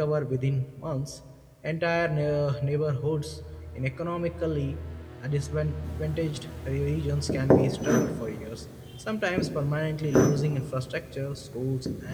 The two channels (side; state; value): both; identical; correlation 1.00